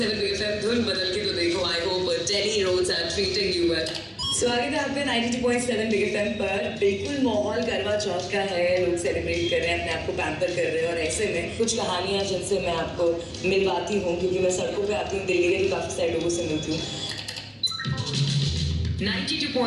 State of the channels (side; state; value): both; identical; correlation 1.00